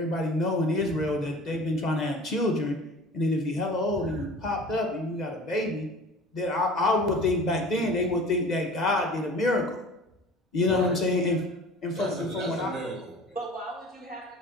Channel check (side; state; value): both; normal; correlation 0.42